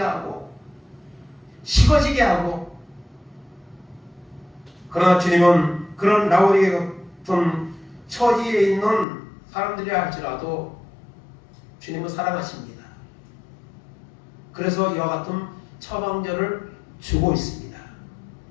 식어지게 하고 그러나 주님은 그런 라오디게 같은 처지에 있는 사람들이라 할지라도 주님은 사랑하십니다. 그래서 이와 같은 처방전을 주고 있습니다.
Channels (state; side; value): drops out; right; at 9.1 s